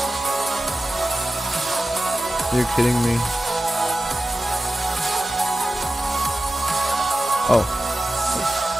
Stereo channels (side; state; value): both; normal; correlation 0.94